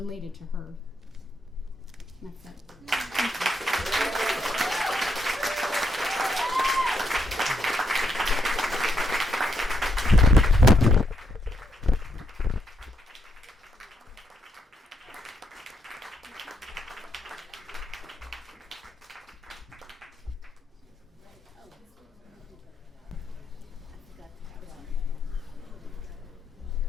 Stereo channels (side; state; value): both; normal; correlation 0.78